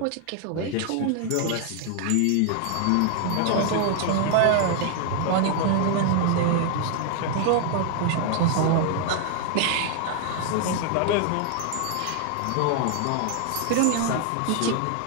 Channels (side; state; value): both; different; correlation 0.00